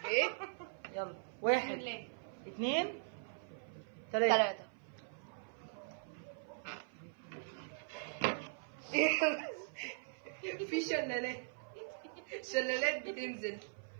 ايه؟ يلا بسم 1 الله. 2 3. 3. في شلالات بتنزل.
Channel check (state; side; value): silent; left; 51 dB below the other